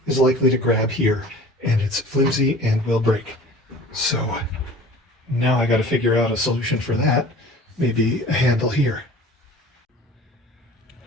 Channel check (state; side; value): normal; both; correlation 0.44